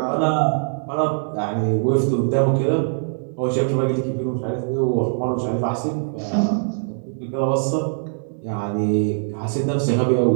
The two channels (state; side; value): silent; left; digital silence